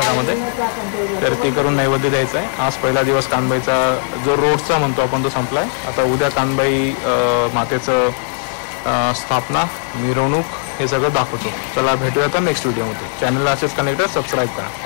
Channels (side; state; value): right; silent; digital silence